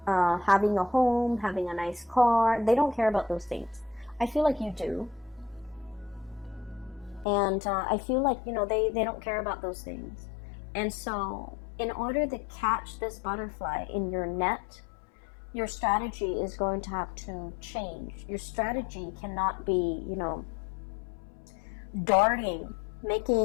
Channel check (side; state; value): right; drops out; at 7.2 s